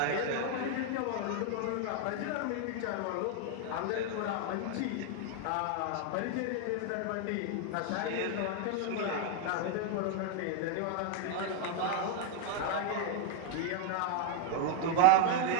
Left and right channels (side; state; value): both; different; correlation 0.01